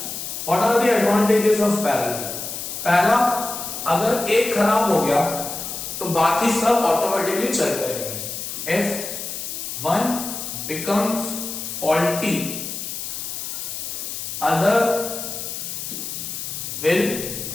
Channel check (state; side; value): noise; left; hiss, 6 dB below the sound